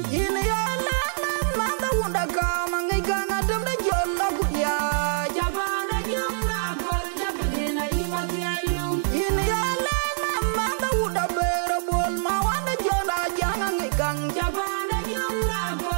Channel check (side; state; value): left; silent; digital silence